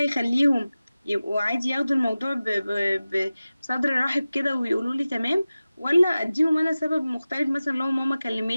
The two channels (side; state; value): both; inverted; correlation -0.96